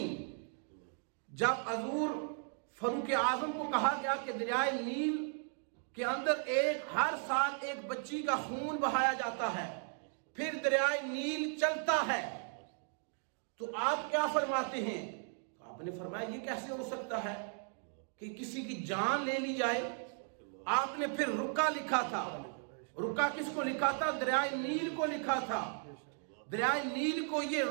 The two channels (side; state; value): left; silent; 54 dB below the other